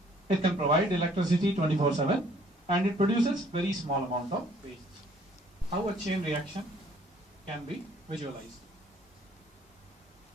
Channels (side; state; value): both; normal; correlation 0.60